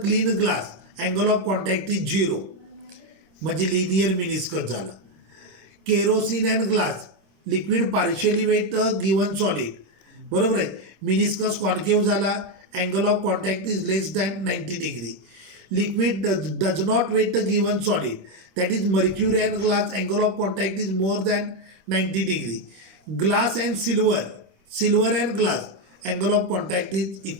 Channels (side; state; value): left; late; 26 ms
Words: glass angle of contact is 0 म्हणजे लिनियर मिनिस्कस झाला. Kerosene and glass liquid partially wet given solid, बरोबर आहे. Meniscus concave झाला, angle of contact is less than 90 degree. Liquid does not wet given solid, that is mercury and glass, angle of contact is more than 90 degree. Glass and silver and glass, angle of contact is